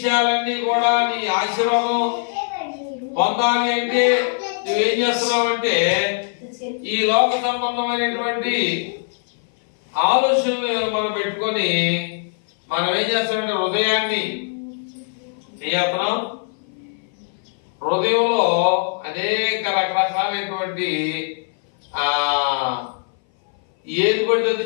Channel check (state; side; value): silent; right; 59 dB below the other